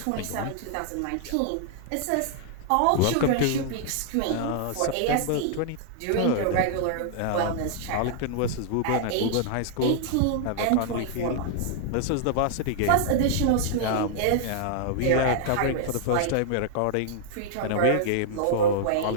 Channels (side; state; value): both; different; correlation -0.01